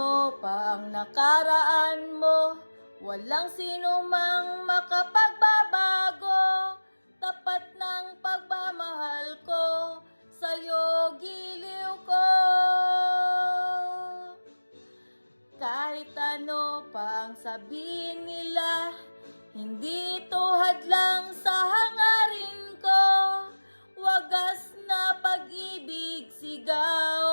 pa ang nakaraan mo, walang sinumang makapagbabago. Tapat ng pagmamahal ko, sa'yo giliw ko. Kahit ano pa ang sabihin nila,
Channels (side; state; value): both; inverted; correlation -1.00